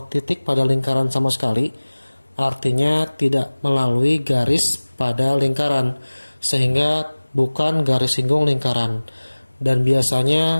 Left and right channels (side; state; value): both; inverted; correlation -1.00